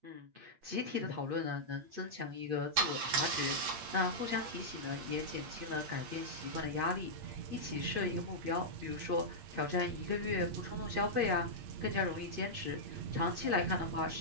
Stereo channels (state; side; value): late; left; 8.5 ms